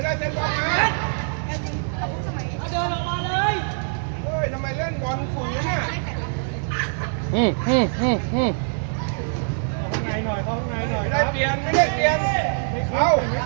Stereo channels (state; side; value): silent; left; digital silence